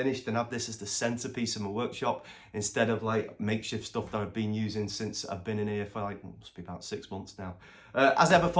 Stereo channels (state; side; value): identical; both; correlation 1.00